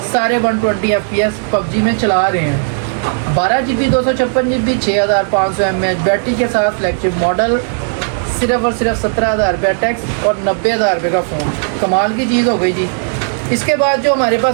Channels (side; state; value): left; silent; digital silence